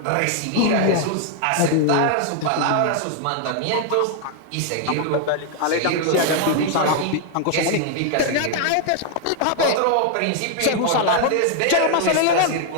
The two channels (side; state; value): both; different; correlation 0.00